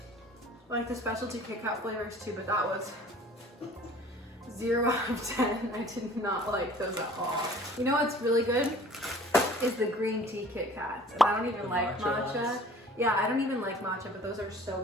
the specialty Kit Kat flavors too, but that was 0 out of 10. I did not like those at all. You know what's really good? Is the green tea Kit Kats. And I don't even like matcha. Ones? Yeah, I don't even like matcha, but those are so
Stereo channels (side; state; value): both; normal; correlation 0.49